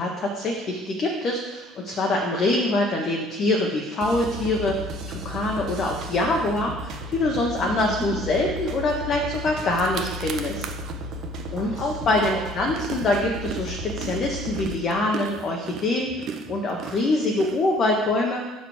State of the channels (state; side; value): normal; both; correlation 0.56